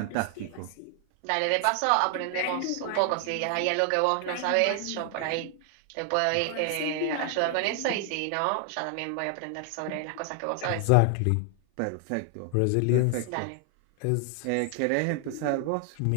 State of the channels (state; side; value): different; both; correlation 0.00